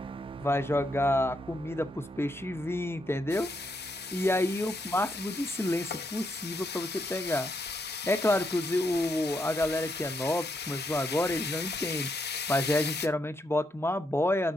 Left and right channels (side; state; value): both; normal; correlation 0.78